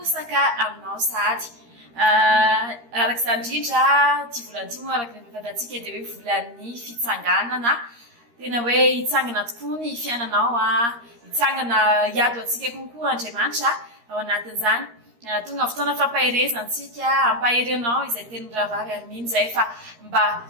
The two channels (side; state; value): left; late; 13 ms